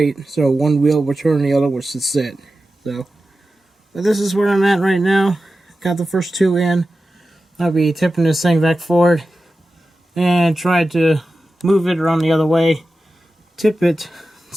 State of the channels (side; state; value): both; normal; correlation 0.93